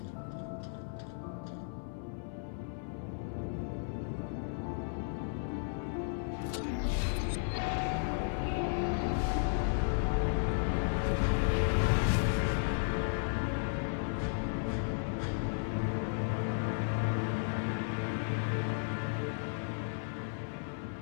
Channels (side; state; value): right; silent; 55 dB below the other